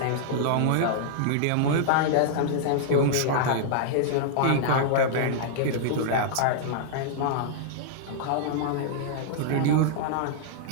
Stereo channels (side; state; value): both; different; correlation -0.02